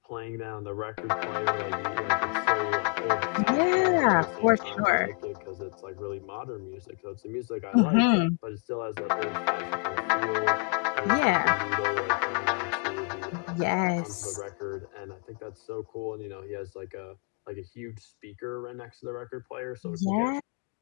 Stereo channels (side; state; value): right; quieter; 36.7 dB